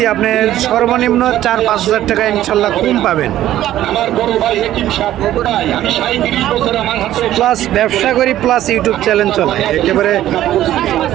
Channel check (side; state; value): left; quieter; 13.1 dB